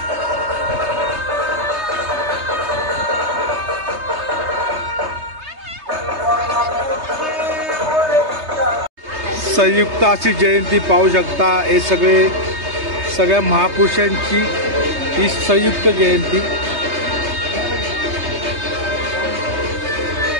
संयुक्त अशी जयंती पाहू शकता। हे सगळ्या महापुरुषांची ही संयुक्त जयंती।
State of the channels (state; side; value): late; left; 3.3 ms